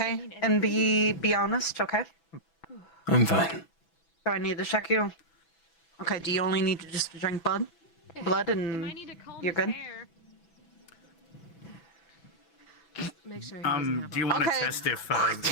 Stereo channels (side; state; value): right; late; 6.1 ms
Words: And be honest, okay? I'm fine. Do I need to check you? Okay, do you only need to just drink blood and you're good? Make sure do you want to Okay. test if